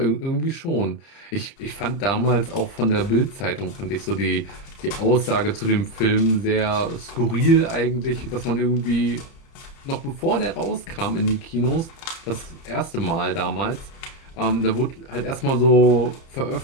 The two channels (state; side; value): late; right; 30 ms